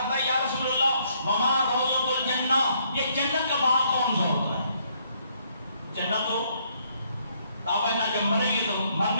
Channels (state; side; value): inverted; both; correlation -0.69